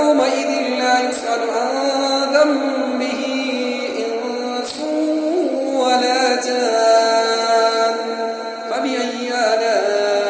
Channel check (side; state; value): both; identical; correlation 1.00